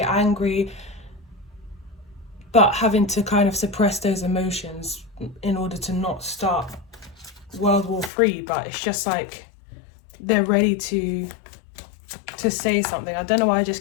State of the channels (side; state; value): right; drops out; at 8.1 s